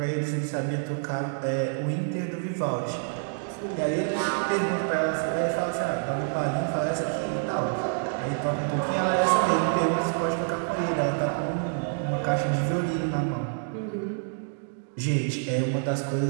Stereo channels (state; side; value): silent; left; digital silence